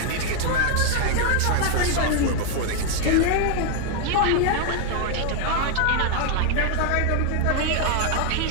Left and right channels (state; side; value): different; both; correlation 0.00